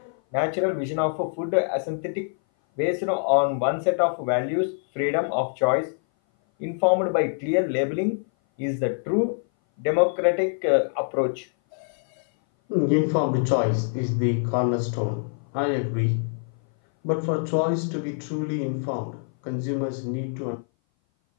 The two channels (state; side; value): silent; right; 58 dB below the other